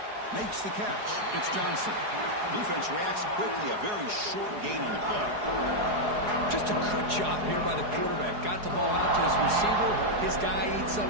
Makes the catch. It's Johnson. Defense reacts quickly. A very short gain on the play. Just a good job here by the quarterback. Got the ball out to his receiver. His guy eats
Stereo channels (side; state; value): left; late; 4.8 ms